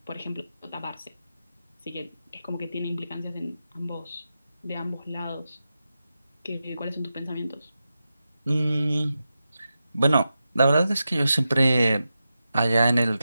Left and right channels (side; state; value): both; inverted; correlation -0.90